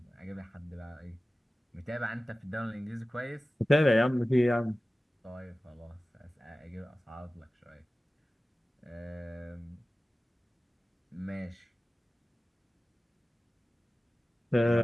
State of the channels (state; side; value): normal; both; correlation 0.96